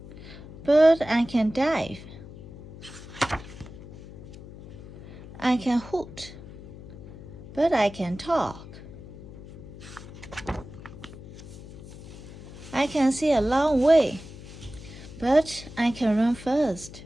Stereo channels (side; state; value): left; noise; hum, 15 dB below the sound